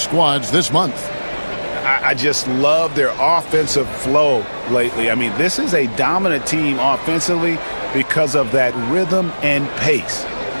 this month. I just love their offensive flow lately. I mean, this is a dominant team offensively because of that rhythm and pace.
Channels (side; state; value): both; inverted; correlation -1.00